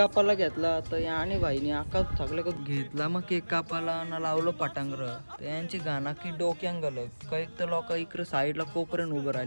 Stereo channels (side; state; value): both; inverted; correlation -1.00